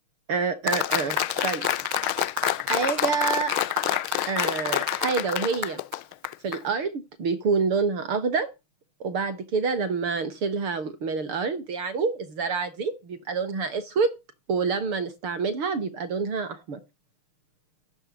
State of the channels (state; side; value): late; left; 6.5 ms